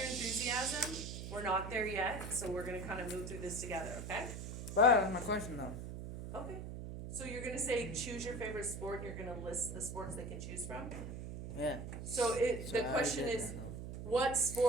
enthusiasm. We're not there yet, so we're going to kind of move through this together, okay? But that's my question, though. Okay. So you're going to say choose your favorite sport, and you're going to list the sports they can choose from? Yeah. So the So I already question did is, that, though. what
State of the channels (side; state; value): right; noise; hum, 7 dB below the sound